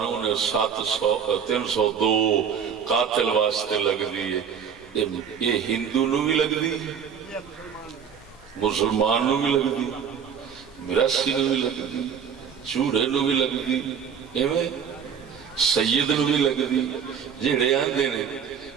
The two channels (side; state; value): left; quieter; 7.4 dB